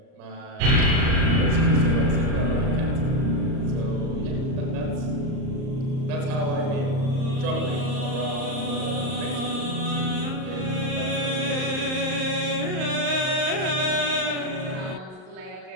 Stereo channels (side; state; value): left; late; 38 ms